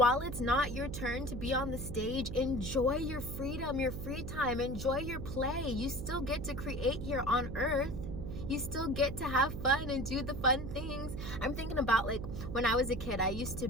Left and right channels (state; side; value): noise; right; hum, 6 dB below the sound